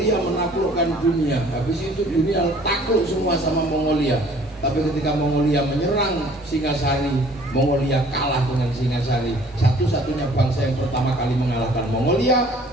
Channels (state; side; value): normal; both; correlation 0.54